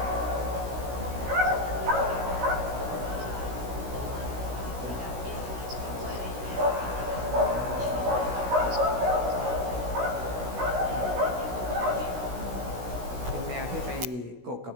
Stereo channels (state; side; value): late; left; 16 ms